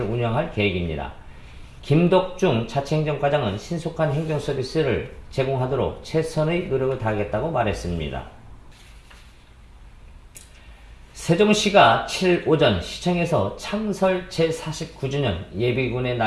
운영할 계획입니다. 김덕중 자치행정과장은 신속한 행정 서비스를 제공하도록 최선의 노력을 다하겠다고 말했습니다. 세종시가 7일 오전 시청에서 창설 제49주년 예비군의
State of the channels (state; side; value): identical; both; correlation 1.00